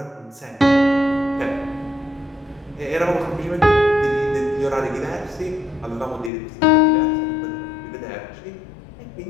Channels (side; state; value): right; drops out; at 6.3 s